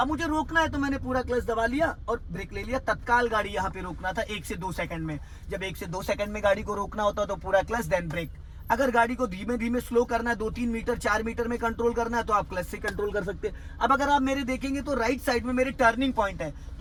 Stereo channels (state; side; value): identical; both; correlation 1.00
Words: मुझे रोकना है तो मैंने पूरा क्लच दबा लिया और ब्रेक ले लिया। तत्काल गाड़ी यहाँ पे रोकना था 1 से 2 सेकंड में। जब 1 से 2 सेकंड में गाड़ी को रोकना होता तो पूरा क्लच देन ब्रेक। अगर गाड़ी को धीमे धीमे स्लो करना है, 2-3 मीटर 4 मीटर में कंट्रोल करना है तो आप क्लच से कंट्रोल कर सकते हैं। अब अगर आप मेरे देखेंगे तो राइट साइड में मेरे टर्निंग पॉइंट है,